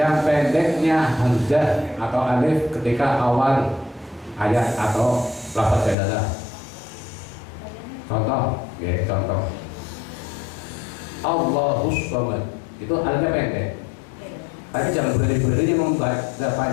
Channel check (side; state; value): right; drops out; at 6.0 s